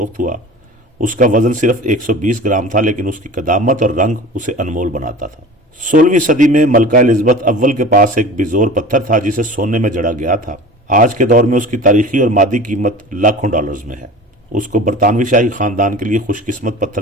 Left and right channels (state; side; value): normal; both; correlation 0.38